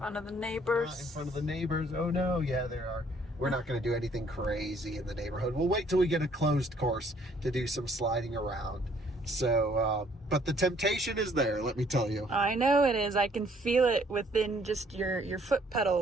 of the neighbors. In front of the neighbors. Oh no, yeah, there are. We're not going to do anything crazy in the neighborhood. We'll wait till we get a closed course to do some sliding around. So, but the temptation is there, let me tell you. I know it is. I can feel it within just your foot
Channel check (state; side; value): normal; both; correlation 0.62